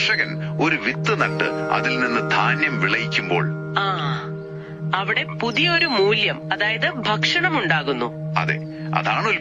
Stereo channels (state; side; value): identical; both; correlation 1.00